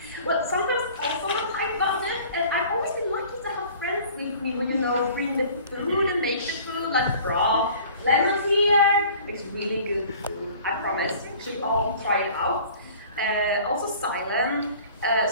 well, sometimes also on a tight budget, and I've always been lucky to have friends with me who, bring the food and make the food, like broth. Lemons here, it's really good food, I promise. You should all try it out. Also silent.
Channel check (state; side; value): inverted; both; correlation -0.48